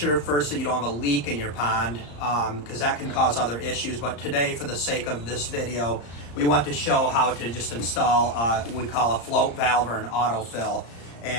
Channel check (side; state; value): right; late; 34 ms